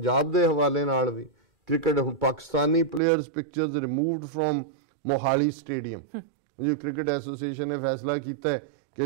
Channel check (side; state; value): left; drops out; at 3.0 s